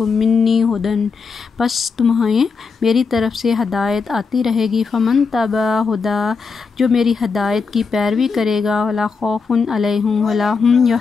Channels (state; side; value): quieter; right; 5.0 dB